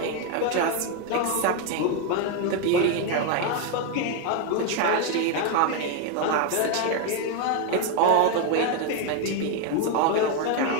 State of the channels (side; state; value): both; different; correlation 0.01